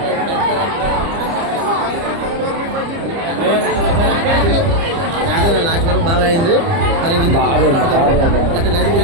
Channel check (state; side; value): late; left; 30 ms